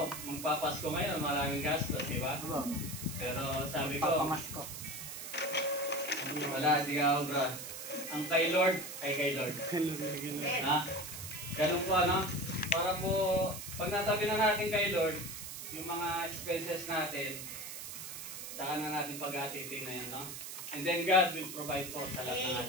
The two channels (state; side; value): noise; right; hiss, 9 dB below the sound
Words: magpapasko ngayon, maraming gastos, di ba? Pero sabi ko, Papamasko. wala, di ka obra. Ang kay Lord, ay kay Lord. Ha? Ganun po, ano? Para po, pag natabi na natin kay Lord, yung mga expenses natin, saka na natin pag-atitin na yan, no? And then God will provide po sa lahat ng